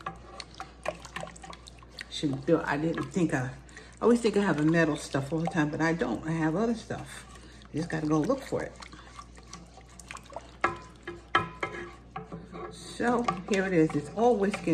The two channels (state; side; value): identical; both; correlation 1.00